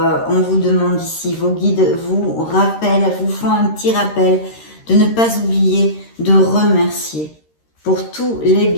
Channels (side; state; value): right; late; 13 ms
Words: On vous demande ici, vos guides vous rappellent, vous font un petit rappel de ne pas oublier de remercier pour tous les